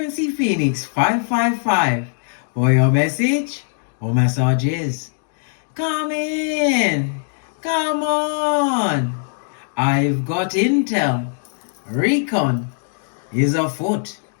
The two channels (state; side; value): silent; right; digital silence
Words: Phoenix 555. For your message or messages. Come in! Come on! I've got intel. Recon is afoot.